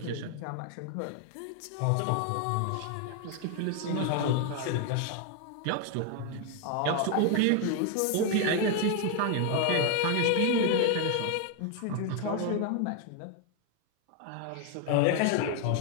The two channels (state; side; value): different; both; correlation 0.01